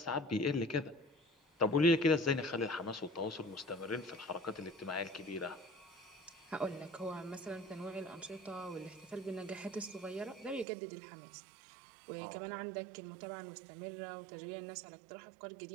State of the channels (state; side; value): drops out; left; at 10.7 s